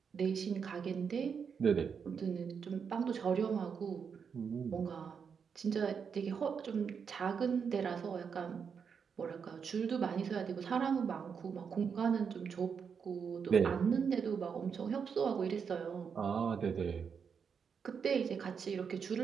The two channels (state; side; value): quieter; left; 6.5 dB